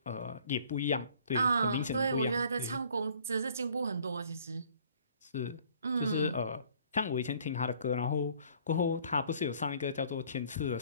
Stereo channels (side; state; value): both; inverted; correlation -0.57